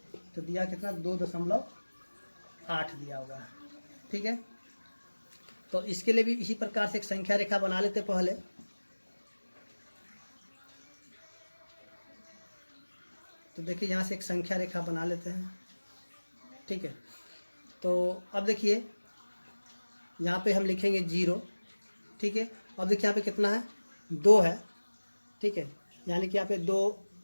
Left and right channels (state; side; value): inverted; both; correlation -1.00